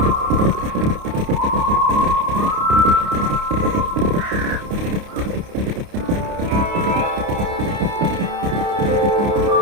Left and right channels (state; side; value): late; left; 29 ms